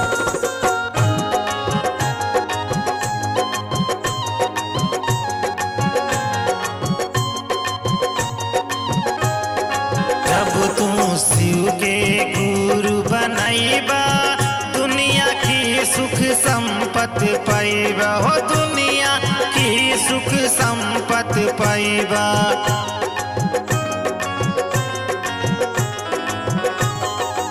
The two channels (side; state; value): both; identical; correlation 1.00